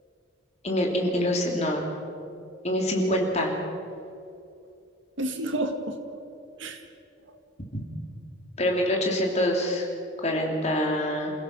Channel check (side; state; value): both; normal; correlation 0.41